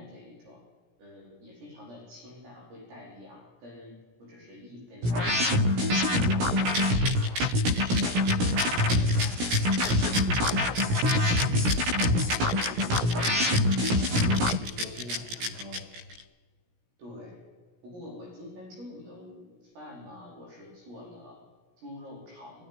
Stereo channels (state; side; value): late; left; 17 ms